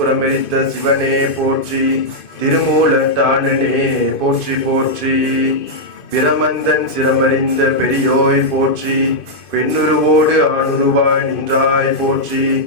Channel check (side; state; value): right; late; 2.5 ms